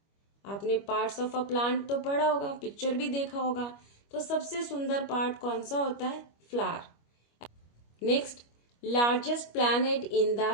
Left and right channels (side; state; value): right; late; 25 ms